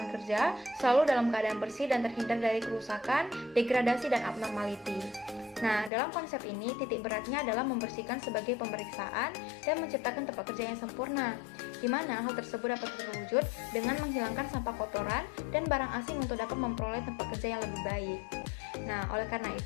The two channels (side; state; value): right; drops out; at 5.9 s